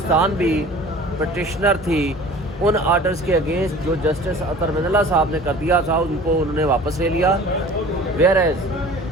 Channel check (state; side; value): normal; both; correlation 0.44